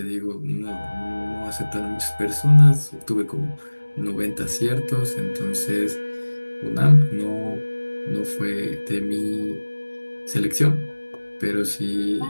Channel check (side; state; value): both; inverted; correlation -1.00